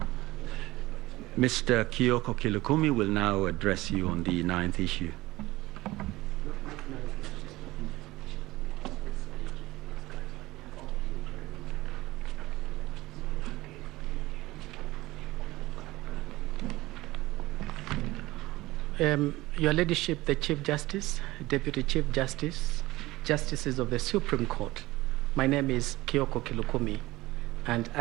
Mr. Kioko Kilukumi will now address you on the 9th issue. Your Ladyship, the Chief Justice, Deputy Chief Justice, Justices of the Supreme Court, my name is Kioko Kilukumi, and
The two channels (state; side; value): quieter; left; 18.6 dB